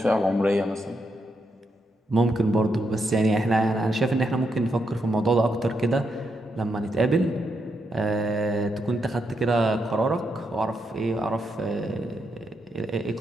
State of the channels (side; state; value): both; normal; correlation 0.81